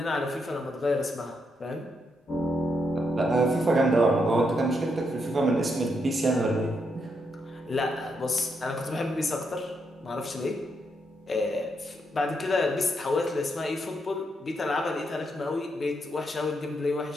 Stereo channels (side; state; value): both; normal; correlation 0.80